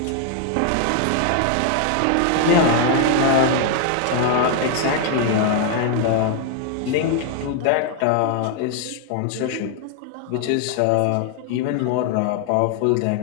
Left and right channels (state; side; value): different; both; correlation 0.00